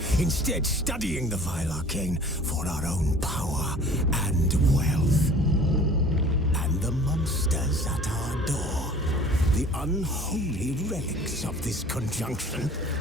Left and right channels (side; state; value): both; normal; correlation 0.47